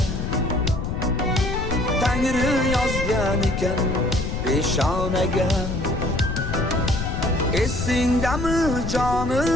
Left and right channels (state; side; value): noise; left; rumble, 3 dB below the sound